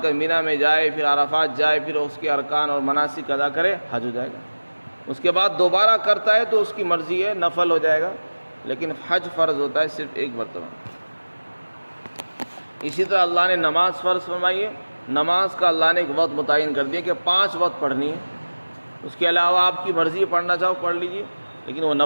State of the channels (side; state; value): both; inverted; correlation -1.00